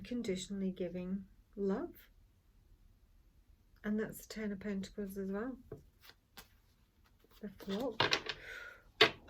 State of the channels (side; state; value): both; identical; correlation 1.00